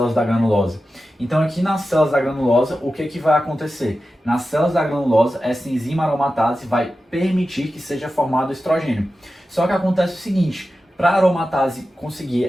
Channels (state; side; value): normal; both; correlation 0.93